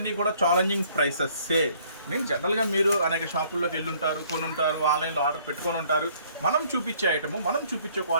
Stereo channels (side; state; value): both; inverted; correlation -0.60